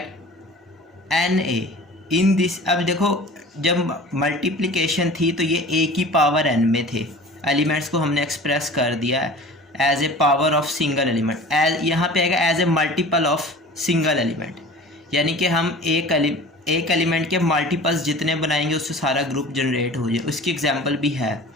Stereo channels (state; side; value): normal; both; correlation 0.41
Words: Na in this। अब देखो, जब मल्टीप्लिकेशन थी तो ये a की पावर n में थे, एलिमेंट्स को हमने एक्सप्रेस कर दिया as a power of single element, as यहाँ पे आएगा as a multiple of single element, यानी कि हम एक एलिमेंट के मल्टीपल्स जितने बनाएंगे उससे सारा ग्रुप जनरेट हो जाए। उसकी एग्जांपल भी है,